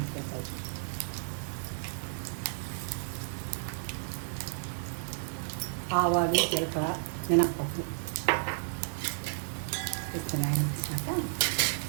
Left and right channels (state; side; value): silent; left; digital silence